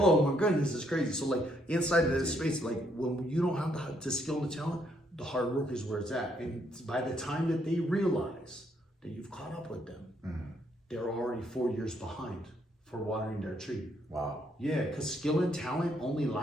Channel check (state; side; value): normal; both; correlation 0.72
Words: my goodness, it's crazy. So like inside of this space, like when you don't have the skill and the talent, the hard work is where it's at. And by the time that they realize that you've caught up with them, they're already 4 years behind for watering their tree. Wow. Yeah, because skill and talent only